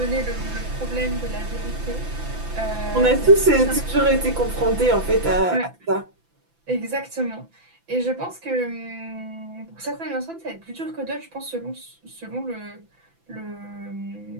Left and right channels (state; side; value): late; left; 5.9 ms